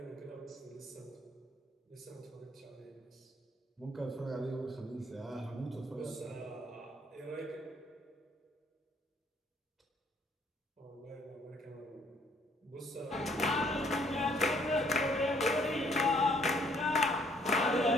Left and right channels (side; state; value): both; normal; correlation 0.64